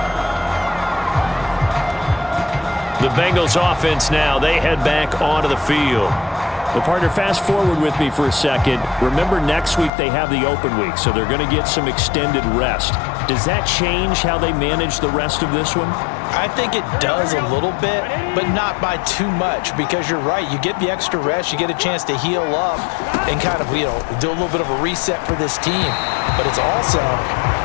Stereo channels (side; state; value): right; drops out; at 9.9 s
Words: The Bengals offense now, they head back onto the field. Well, partner, fast forward with me for a second. Remember, next week they have the open week, so they're going to get some extended rest. Does that change how they manage the rest of this one? I think it does a little bit, but not by too much, because you're right. You get the extra rest, you get a chance to heal up and kind of, do a little bit of a reset for this team. But it's also